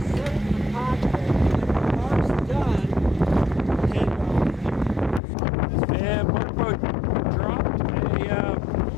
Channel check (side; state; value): right; drops out; at 5.2 s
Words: And Mark Boat dropped a